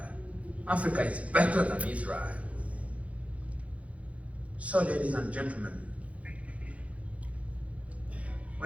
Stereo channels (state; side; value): late; left; 0.065 ms